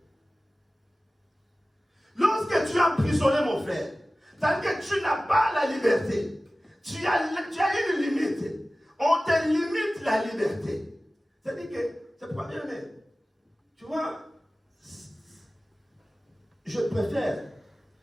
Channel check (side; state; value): both; normal; correlation 0.96